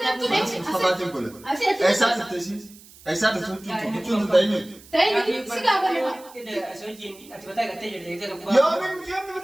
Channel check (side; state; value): right; noise; hiss, 22 dB below the sound